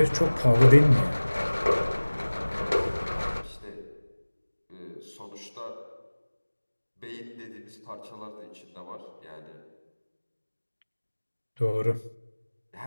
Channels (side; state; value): both; inverted; correlation -1.00